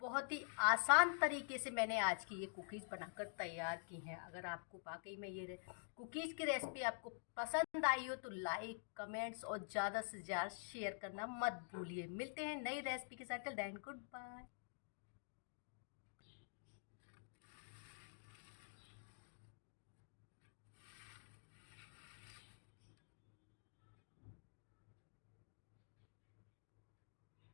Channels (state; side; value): silent; right; digital silence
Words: बहुत ही आसान तरीके से मैंने आज की ये कुकीज़ बनाकर तैयार की हैं। अगर आपको वाकई में ये कुकीज़ की रेसिपी आपको पसंद आई हो तो लाइक कमेंट्स और ज़्यादा से ज़्यादा शेयर करना मत भूलिए। मिलते हैं नई रेसिपी के साथ। Till then good bye.